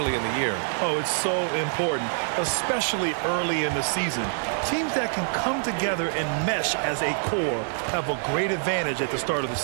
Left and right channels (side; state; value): left; silent; digital silence